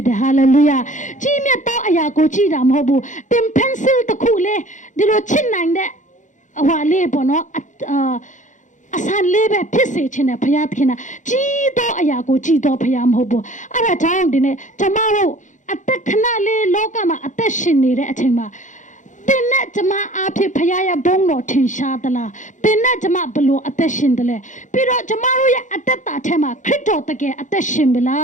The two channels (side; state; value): right; late; 0.36 ms